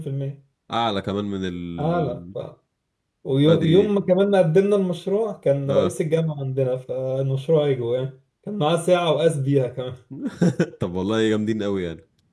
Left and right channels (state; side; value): identical; both; correlation 1.00